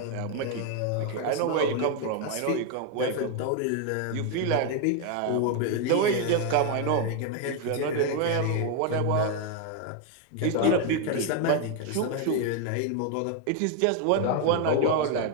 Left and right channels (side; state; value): both; different; correlation 0.01